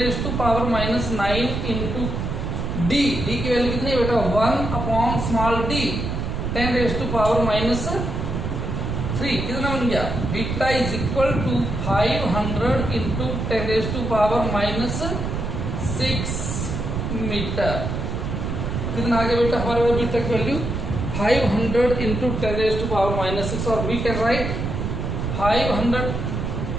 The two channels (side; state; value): right; noise; rumble, 3 dB below the sound